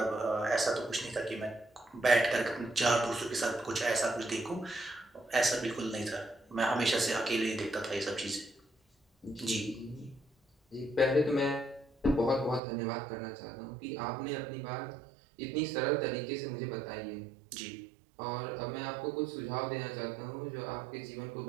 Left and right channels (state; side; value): drops out; left; at 12.6 s